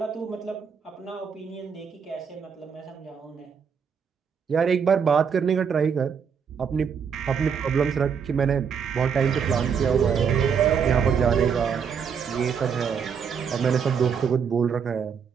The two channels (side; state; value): left; quieter; 6.8 dB